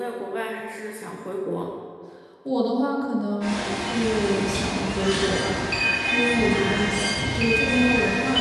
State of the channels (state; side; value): identical; both; correlation 1.00